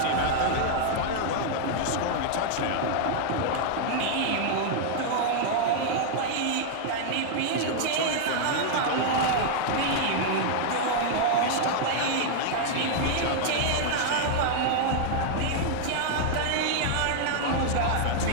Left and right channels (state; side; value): different; both; correlation 0.00